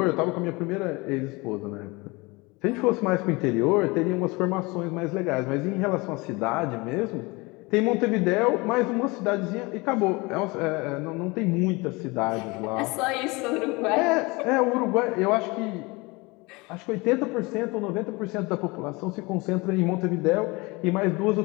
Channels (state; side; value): quieter; right; 25.0 dB